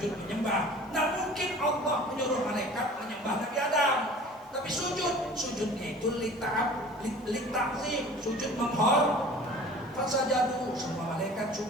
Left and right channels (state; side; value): normal; both; correlation 0.44